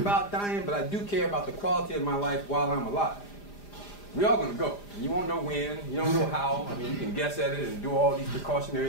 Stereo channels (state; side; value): late; right; 4.9 ms